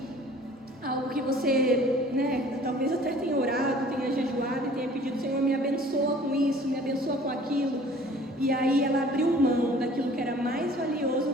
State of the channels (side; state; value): both; normal; correlation 0.50